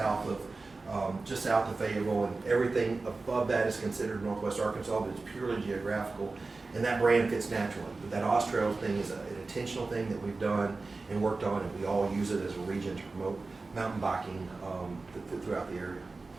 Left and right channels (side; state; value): left; quieter; 3.7 dB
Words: of Fayetteville, and everything above that is considered Northwest Arkansas, but it's purely geographical, and that brand fits naturally. But that Oz Trails thing is an intentional thing that we've done and worked on, and we all use it as a region to promote mountain biking throughout the area.